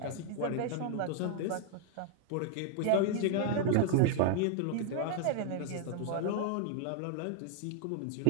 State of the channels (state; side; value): different; both; correlation 0.00